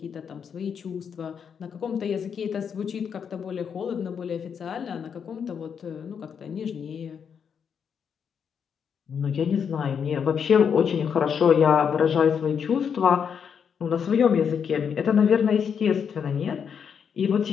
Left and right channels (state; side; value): quieter; right; 7.1 dB